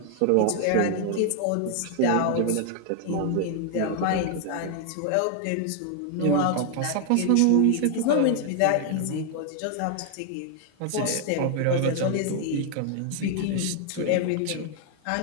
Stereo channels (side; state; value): both; different; correlation 0.00